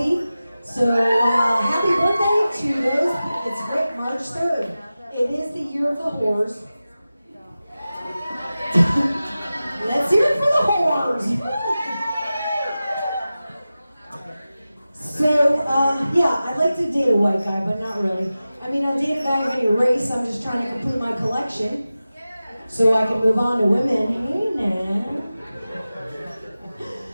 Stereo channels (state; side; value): inverted; both; correlation -0.95